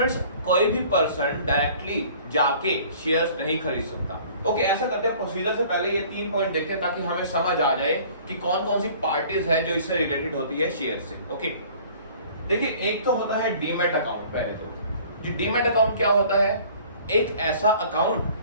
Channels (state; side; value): inverted; both; correlation -0.51